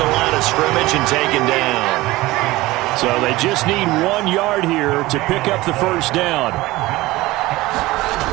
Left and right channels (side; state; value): left; quieter; 19.0 dB